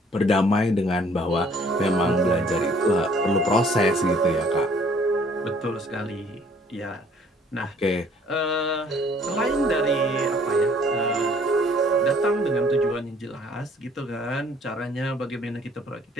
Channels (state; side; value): normal; both; correlation 0.58